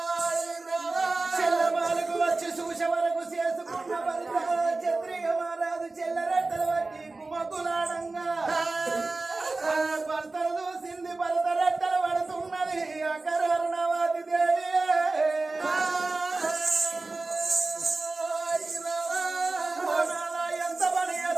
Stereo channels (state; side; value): quieter; left; 3.4 dB